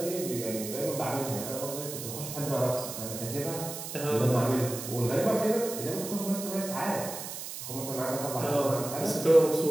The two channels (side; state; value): right; noise; hiss, 8 dB below the sound